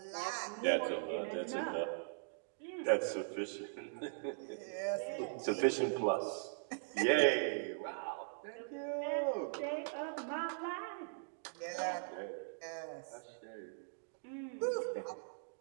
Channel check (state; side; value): silent; left; digital silence